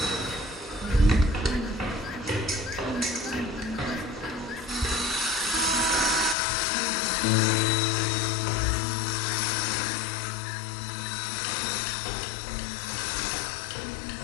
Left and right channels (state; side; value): drops out; right; at 6.4 s